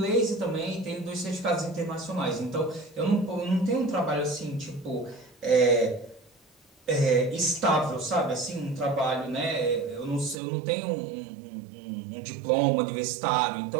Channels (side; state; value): left; drops out; at 10.4 s